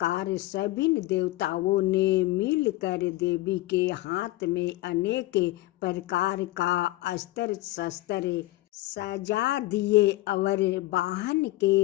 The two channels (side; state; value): right; quieter; 18.1 dB